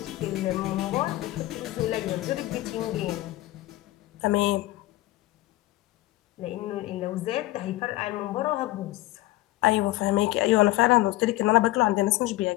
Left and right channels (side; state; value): right; quieter; 17.6 dB